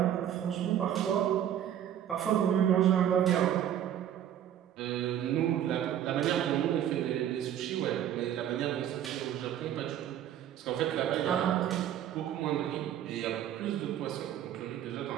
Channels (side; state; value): left; quieter; 10.6 dB